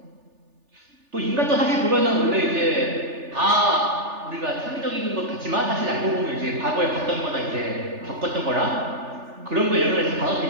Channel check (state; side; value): late; left; 3.4 ms